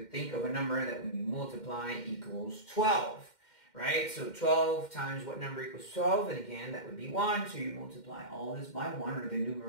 think of a number that when you multiply equals 12. Right? So 12 times what number equals 12? And again, that would be 1. So you multiply all this by 1, or the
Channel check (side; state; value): right; late; 2.1 ms